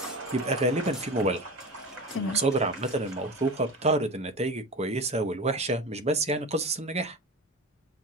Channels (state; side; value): normal; both; correlation 0.29